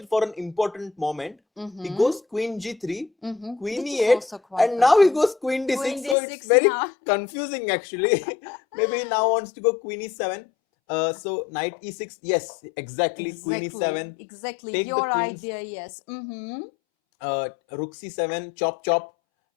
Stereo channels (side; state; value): right; drops out; at 6.2 s